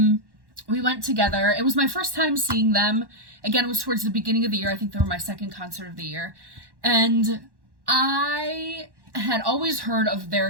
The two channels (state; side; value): late; left; 1.1 ms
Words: We went together. It was my first time seeing them. Again, it was towards the beginning of the year. I think they were my second concert of the year, and I had always heard of